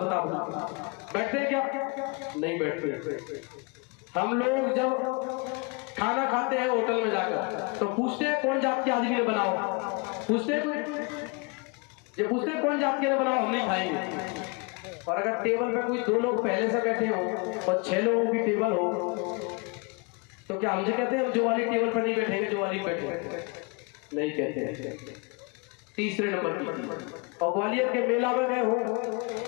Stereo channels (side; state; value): right; quieter; 31.4 dB